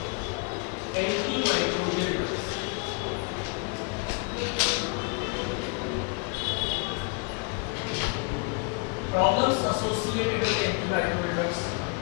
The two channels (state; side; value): quieter; right; 33.8 dB